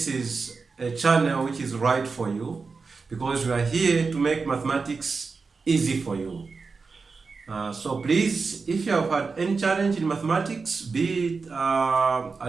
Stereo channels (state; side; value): quieter; left; 4.6 dB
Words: is a channel which is right for you because we are here to make mathematics easy for you. So please, if you have had any challenge in mathematics, be it